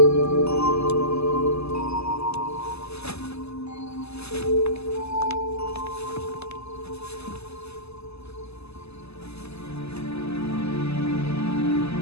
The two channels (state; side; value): late; right; 0.79 ms